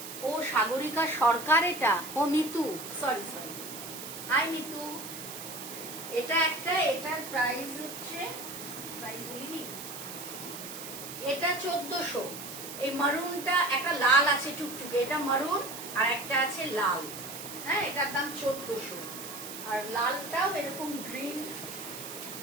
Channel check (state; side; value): noise; right; hiss, 10 dB below the sound